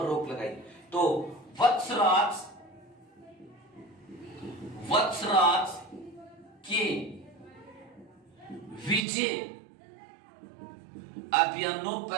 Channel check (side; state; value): left; drops out; at 9.0 s